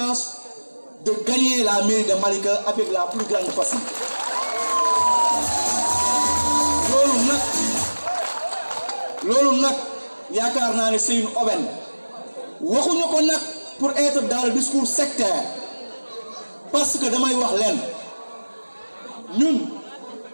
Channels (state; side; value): inverted; both; correlation -1.00